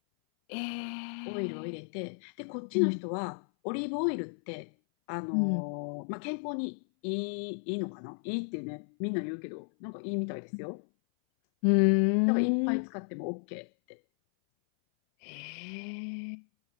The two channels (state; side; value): silent; right; 56 dB below the other